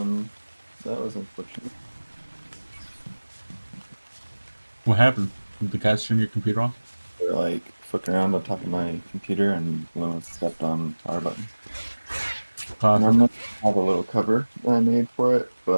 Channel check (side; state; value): both; inverted; correlation -1.00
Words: was unfortunate. What happened? Did the cats turn your computer off? They're like fucking around on top of my computer and Luma stepped on the power button. Classic. Normally I have a little cover that I made for it,